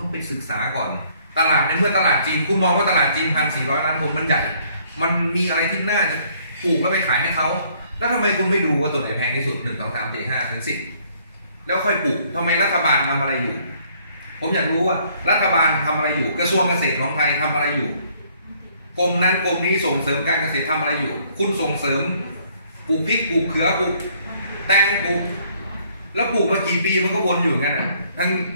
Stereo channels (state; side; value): inverted; both; correlation -0.64